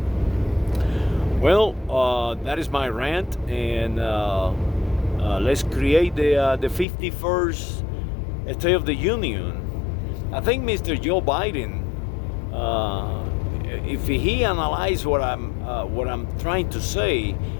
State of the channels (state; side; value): drops out; right; at 6.9 s